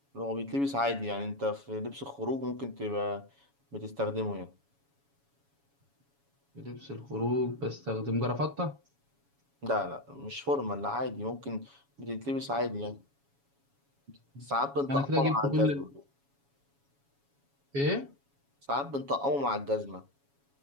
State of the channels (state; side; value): late; left; 7.2 ms